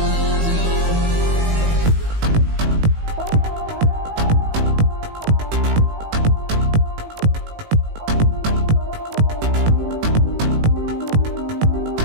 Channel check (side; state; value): left; late; 18 ms